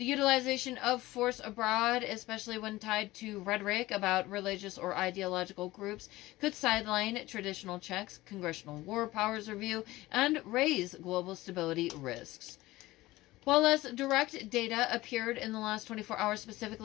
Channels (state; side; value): quieter; right; 18.2 dB